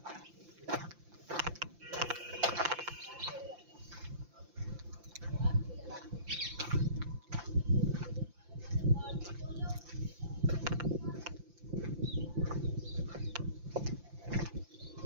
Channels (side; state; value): left; late; 5.8 ms